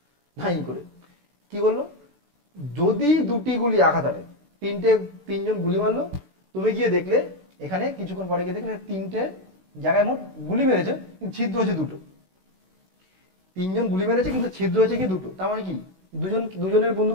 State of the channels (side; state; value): left; late; 16 ms